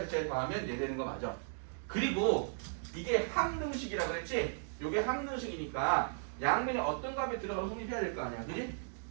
더하면 얘 되는 거 맞아. 그리고 이게 항등식이라 그랬지? 요게 항등식이니까 양면에 어떤 값이 들어가서 성립해야 될 거 아니야. 그지?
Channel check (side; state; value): left; silent; digital silence